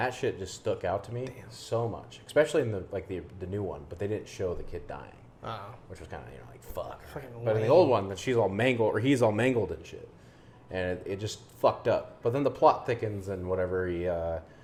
shit just stuck out to me so much, especially in the new one. But they didn't show the kid dying. which was kind of like fuck. Fucking But in the lame. old one, that she's all mangled or he's all mangled and shit, and it just fucked up. But then the plot thickens and whatever.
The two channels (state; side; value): identical; both; correlation 1.00